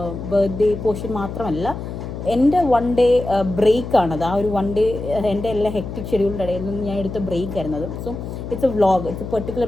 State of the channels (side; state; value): left; noise; hum, 8 dB below the sound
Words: ബർത്ത്ഡേ പോർഷൻ മാത്രമല്ല, എൻ്റെ 1 ഡേ ബ്രേക്കാണത്. ആ ഒരു 1 ഡേ എൻ്റെ എല്ലാ ഹെക്ടിക് ഷെഡ്യൂളിൻ്റെ ഇടയിൽ നിന്ന് ഞാൻ എടുത്ത ബ്രേക്ക് ആയിരുന്നത്. So it's a vlog, it's a particular